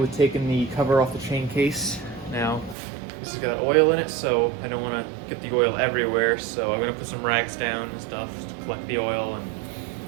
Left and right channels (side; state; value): left; drops out; at 2.8 s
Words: taking the cover off the chain case. Now this has got oil in it, so I don't want to get the oil everywhere, so I'm going to put some rags down and stuff to collect the oil, and